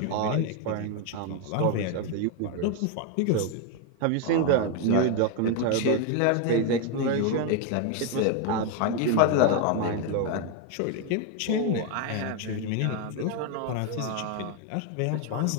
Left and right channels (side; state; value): both; different; correlation 0.01